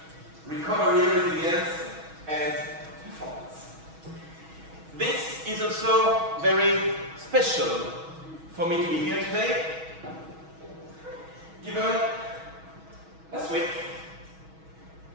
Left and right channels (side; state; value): left; late; 6.2 ms